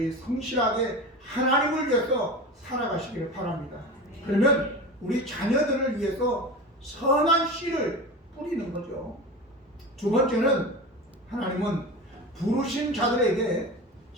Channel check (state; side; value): normal; both; correlation 0.29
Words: 성실하게 하나님을 위해서 살아가시기를 바랍니다. 그러면 우리 자녀들을 위해서 선한 씨를 뿌리는 거죠. 두 번째는 하나님은 부르신 자들에게